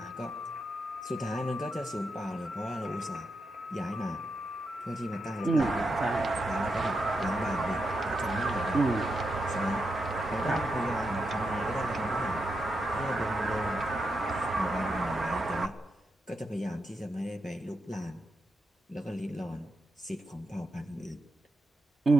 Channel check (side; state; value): both; normal; correlation 0.85